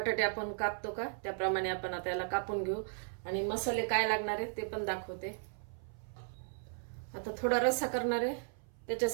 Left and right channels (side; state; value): left; silent; 54 dB below the other